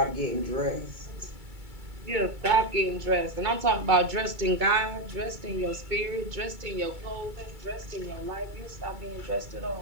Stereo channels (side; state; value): left; late; 2.2 ms